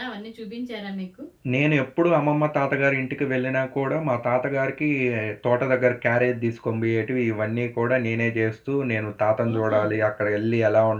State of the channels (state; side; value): identical; both; correlation 1.00